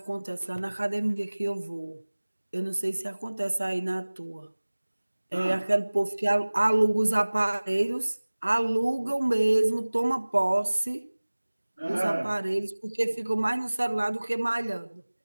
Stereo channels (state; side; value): inverted; both; correlation -1.00